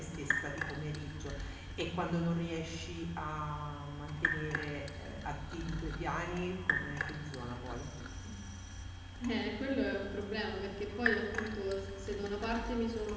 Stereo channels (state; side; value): identical; both; correlation 1.00